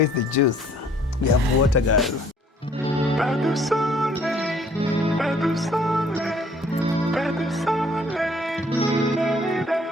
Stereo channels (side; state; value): both; normal; correlation 0.59